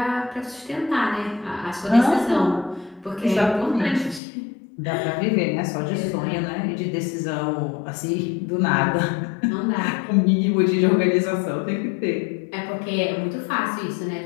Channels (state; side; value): drops out; right; at 4.2 s